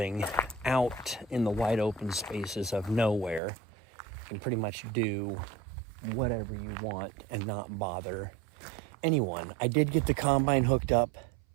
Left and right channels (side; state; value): left; drops out; at 3.4 s